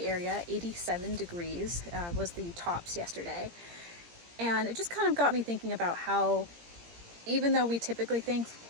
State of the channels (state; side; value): late; left; 17 ms